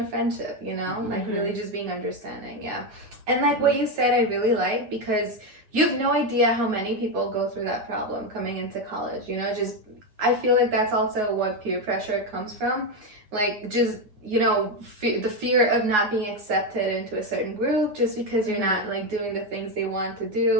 friendship, you know, like really just being understanding. And like what you said, I really like, because you have no idea how many people go through that problem coming into college, you know. Just I feel like that's also what peer pressure comes from, like just, you know, the fear of not being accepted into a certain group just because you're not like doing the things they want to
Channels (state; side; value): late; left; 9.5 ms